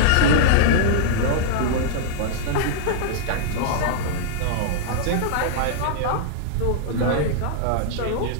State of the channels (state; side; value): different; both; correlation -0.01